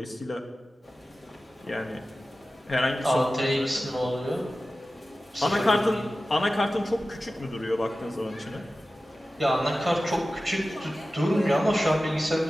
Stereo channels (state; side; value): normal; both; correlation 0.95